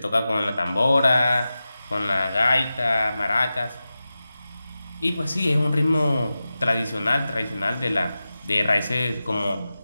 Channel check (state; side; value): inverted; both; correlation -0.94